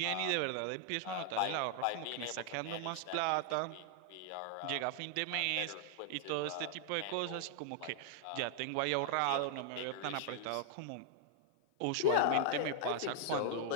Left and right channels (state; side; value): different; both; correlation 0.00